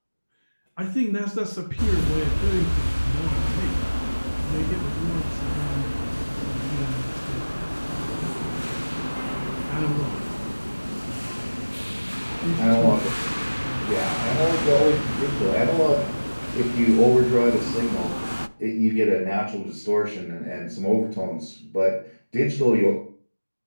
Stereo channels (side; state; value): both; inverted; correlation -1.00